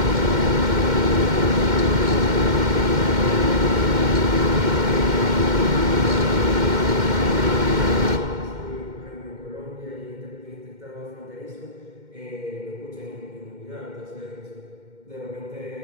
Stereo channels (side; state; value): left; late; 2.1 ms